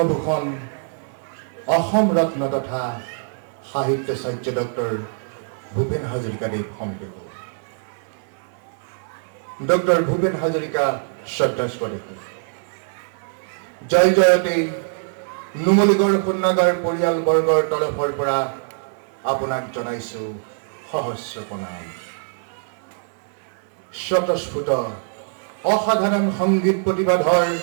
অসম ৰত্ন তথা সাহিত্যাচাৰ্য ডক্টৰ ভূপেন হাজৰিকাদেৱ সম্পৃক্ত ডক্টৰ ভূপেন হাজৰিকা শ্ৰদ্ধাস্পদ জয় জয়তে নুমলীগড় শোধনাগাৰ পৰিয়ালবৰ্গৰ তৰফৰ পৰা আপোনাক জনাইছোঁ সহস্ৰ প্ৰণাম। স্বতঃস্ফূৰ্ত অসাধাৰণ সংগীত প্ৰতিবাদৰ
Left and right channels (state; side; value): silent; left; digital silence